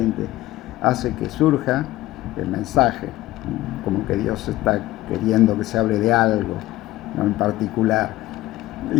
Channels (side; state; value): right; quieter; 16.6 dB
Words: hace que surja el mensaje, como que Dios está queriendo que se hable de algo, ¿no?, en particular.